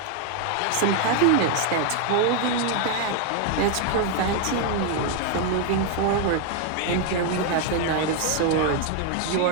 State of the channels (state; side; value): different; both; correlation 0.01